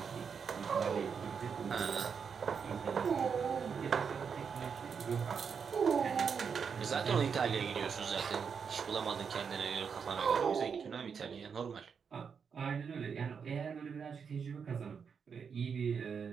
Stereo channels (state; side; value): quieter; left; 6.4 dB